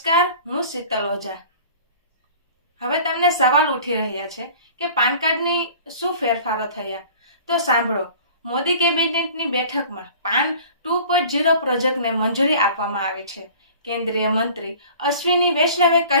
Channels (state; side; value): inverted; both; correlation -0.45